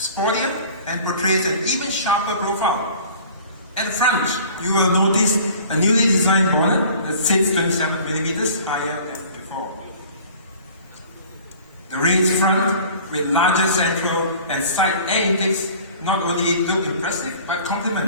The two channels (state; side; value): inverted; both; correlation -0.47